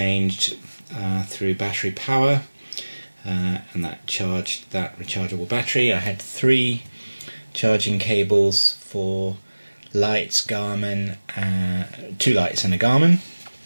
through battery power, and that charged that rechargeable battery. I had 3 charging cables for lights, Garmin, 2 lights and a Garmin.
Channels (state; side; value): inverted; both; correlation -1.00